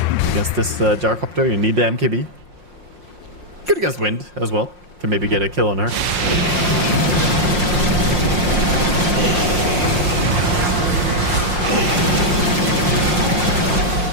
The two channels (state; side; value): late; left; 5.6 ms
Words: against this gyrocopter, you need the MKB. Good against Wind as well. Can maybe get a kill on her.